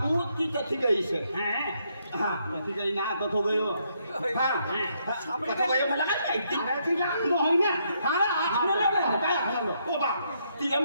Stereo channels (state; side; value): inverted; both; correlation -0.75